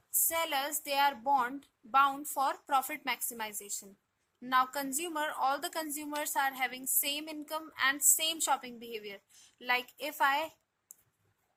sellers, they are bound for profit maximization. Now all the consumers are having same income and same shopping behavior. Like if I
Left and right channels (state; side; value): identical; both; correlation 1.00